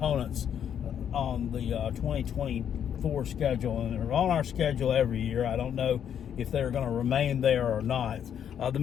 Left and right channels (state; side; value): quieter; right; 8.9 dB